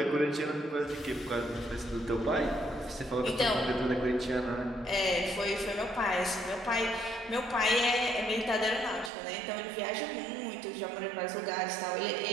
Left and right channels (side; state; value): left; drops out; at 9.1 s